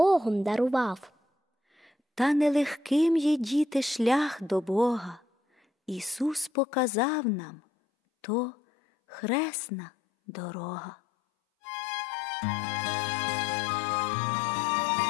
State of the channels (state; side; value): drops out; right; at 6.5 s